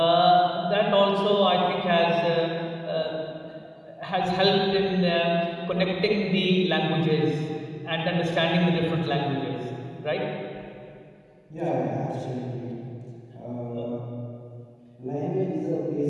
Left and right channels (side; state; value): both; identical; correlation 1.00